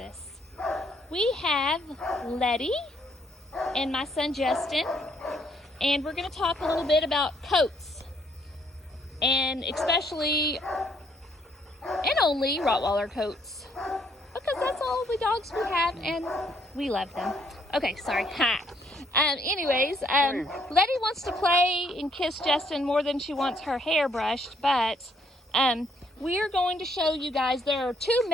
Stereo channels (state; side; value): normal; both; correlation 0.69